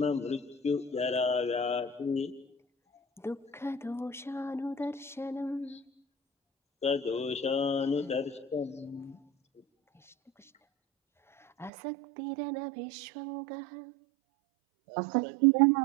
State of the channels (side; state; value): left; drops out; at 11.7 s